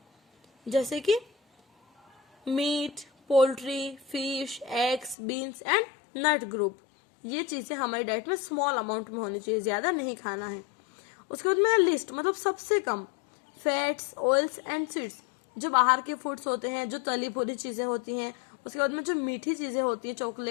जैसे कि meat, poultry, fish, eggs, beans and nut group. ये चीजें हमारी डाइट में स्मॉल अमाउंट में होनी चाहिए, ज्यादा नहीं खाना है। उसके बाद में लिस्ट, मतलब सबसे कम फैट्स, ऑयल्स एंड स्वीट्स, जो बाहर के फूड्स होते हैं, जो तली भुनी चीजें होती हैं। उसके बाद में जो मीठी चीजें होती हैं,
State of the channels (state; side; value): drops out; right; at 5.2 s